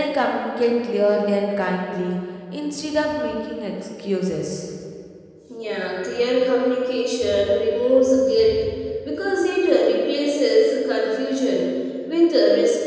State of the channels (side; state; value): both; identical; correlation 1.00